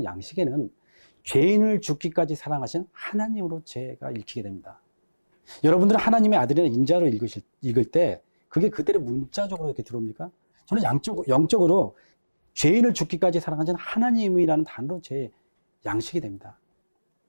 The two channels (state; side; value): inverted; both; correlation -1.00